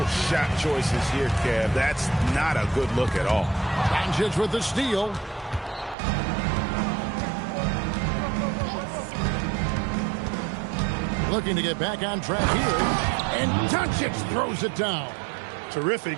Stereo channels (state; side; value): drops out; left; at 6.0 s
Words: shot choices here, Kev. That's not a good look at all. Doncic with the steal. Looking to get back on track here. And Doncic throws it down.